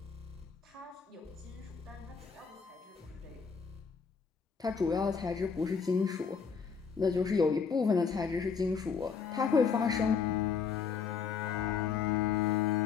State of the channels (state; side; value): quieter; right; 5.9 dB